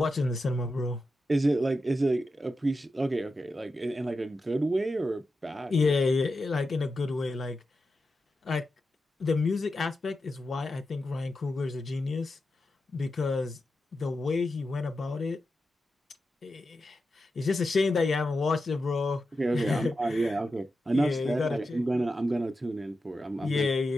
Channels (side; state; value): both; normal; correlation 0.90